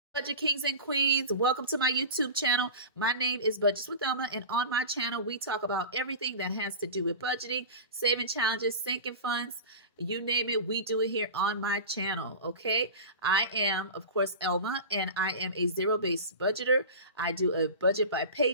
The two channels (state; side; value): inverted; both; correlation -0.30